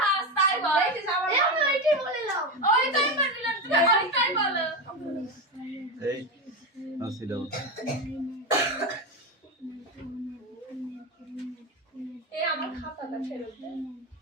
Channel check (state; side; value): normal; both; correlation 0.15